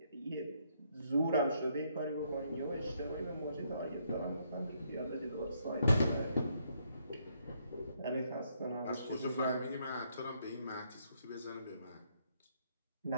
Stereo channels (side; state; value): both; inverted; correlation -0.73